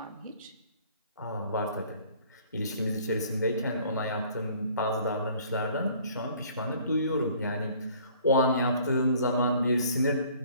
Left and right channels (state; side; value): inverted; both; correlation -0.55